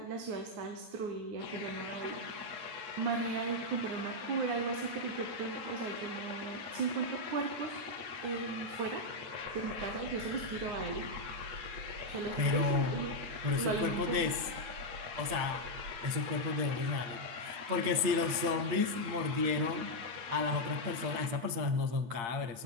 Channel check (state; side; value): late; left; 8.7 ms